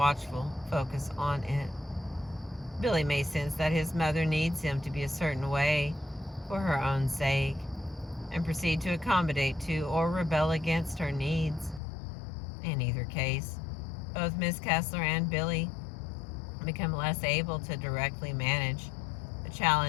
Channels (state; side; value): drops out; right; at 11.8 s